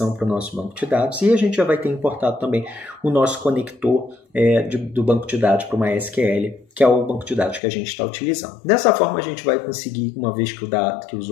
para o nosso banco de dados e a gente já vai ter importado também o nosso conector do banco de dados para o MySQL, que é o banco de dados que a gente está utilizando. Dessa forma a gente vai conseguir, uma vez que o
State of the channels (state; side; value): drops out; right; at 7.6 s